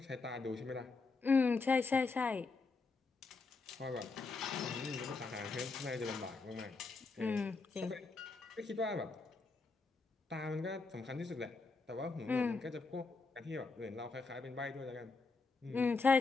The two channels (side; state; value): right; quieter; 4.1 dB